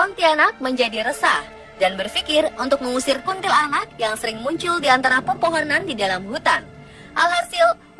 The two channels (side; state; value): both; identical; correlation 1.00